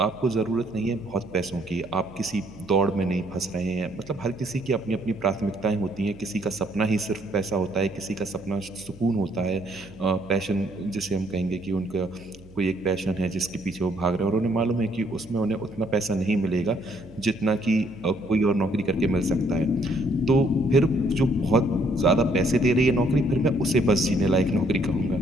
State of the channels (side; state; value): right; noise; hum, 23 dB below the sound